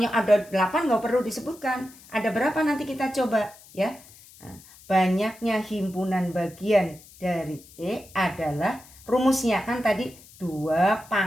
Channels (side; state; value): left; noise; hiss, 22 dB below the sound